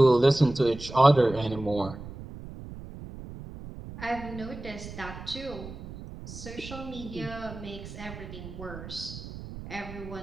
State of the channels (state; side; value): noise; right; rumble, 12 dB below the sound